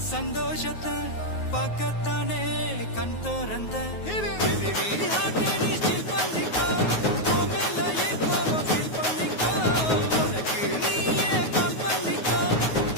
சந்தோஷத்தை பார்க்கத்தானே கண் திறந்த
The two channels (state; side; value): late; right; 9.4 ms